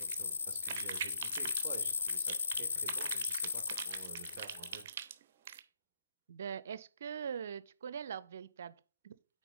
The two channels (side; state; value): both; inverted; correlation -0.73